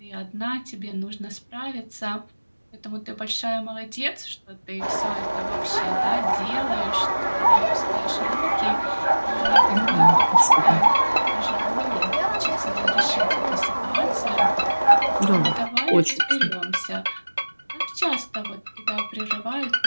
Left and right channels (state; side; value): inverted; both; correlation -1.00